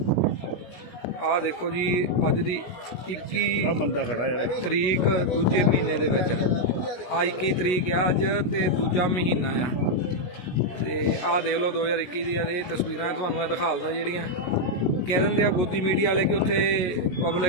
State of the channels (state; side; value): late; right; 17 ms